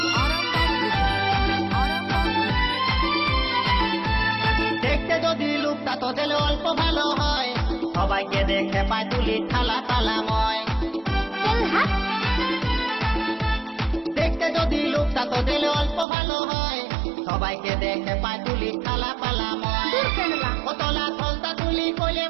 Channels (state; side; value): drops out; left; at 16.1 s